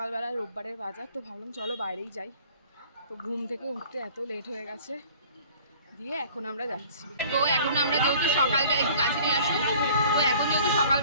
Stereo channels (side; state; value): both; inverted; correlation -0.50